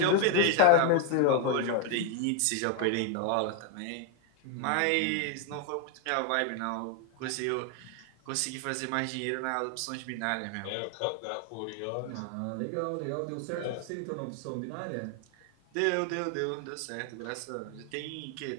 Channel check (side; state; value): both; different; correlation 0.00